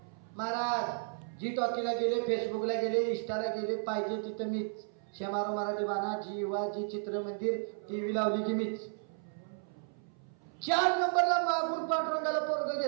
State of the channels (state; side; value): silent; left; 55 dB below the other